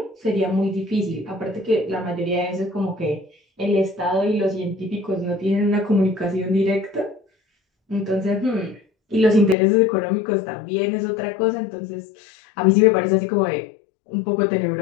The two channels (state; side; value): drops out; right; at 9.6 s